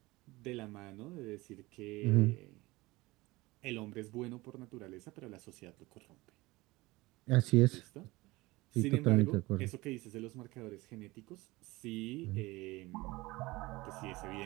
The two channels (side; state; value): left; quieter; 21.1 dB